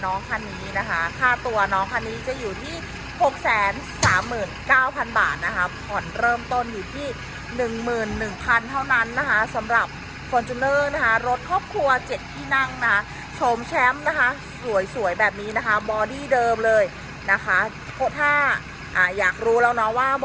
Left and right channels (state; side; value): identical; both; correlation 1.00